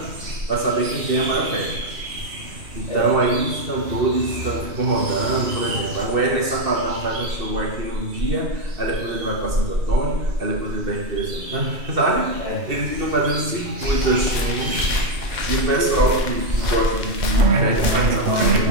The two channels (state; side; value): late; left; 2.7 ms